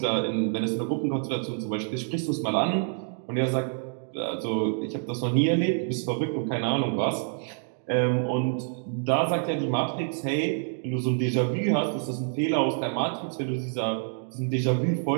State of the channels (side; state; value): left; silent; 60 dB below the other